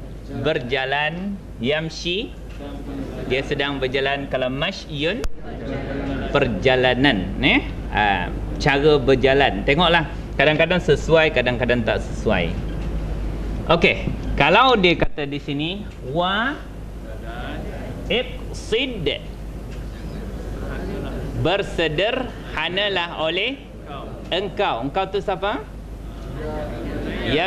berjalan, yamshi dia sedang berjalan. Kalau mashyun perjalanan, cara berjalan. Tengoklah, kadang-kadang sesuai, kadang-kadang tak sesuai. Okey, kalau dia kata di sini wa iqsid, bersederhanalah oleh engkau. Engkau tu siapa?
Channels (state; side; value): identical; both; correlation 1.00